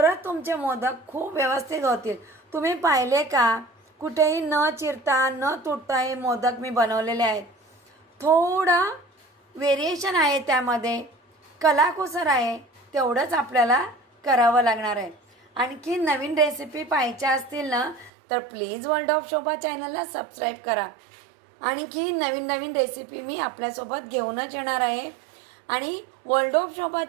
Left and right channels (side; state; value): left; drops out; at 18.1 s